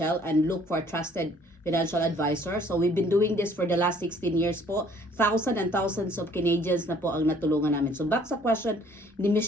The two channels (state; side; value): normal; both; correlation 0.58